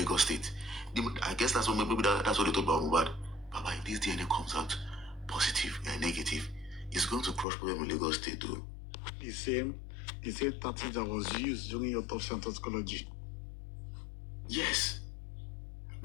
State. I guess that's what that's what they talk about Mohbad. Baba, if this DNA comes out positive and negative, it's going to crush problem in Lagos State too. The same tactic that was used during your autopsy and toxicology. Yes.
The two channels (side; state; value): right; drops out; at 7.5 s